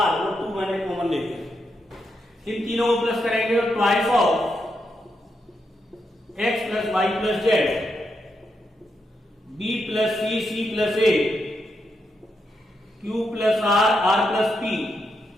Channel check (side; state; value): both; normal; correlation 0.83